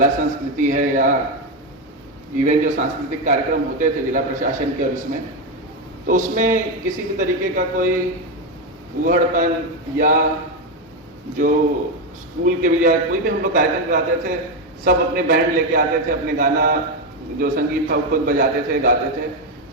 संस्कृति है, या इवन जो सांस्कृतिक कार्यक्रम होते थे जिला प्रशासन के और इसमें, तो उसमें किसी भी तरीके का कोई उहड़पन या जो स्कूल के भी या कोई भी हम लोग कार्यक्रम कराते थे, सब अपने बैंड लेके आते थे, अपने गाना जो संगीत था वो खुद बजाते थे, गाते थे।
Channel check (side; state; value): both; normal; correlation 0.09